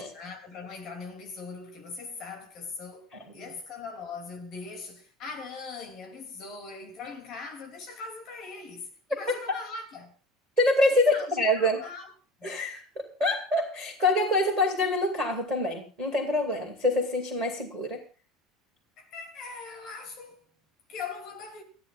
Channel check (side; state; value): both; normal; correlation 0.33